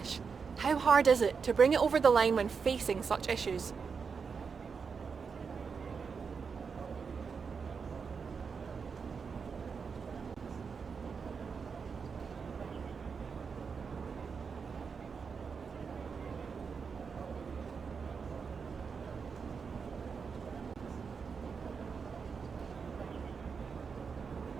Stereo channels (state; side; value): quieter; left; 5.6 dB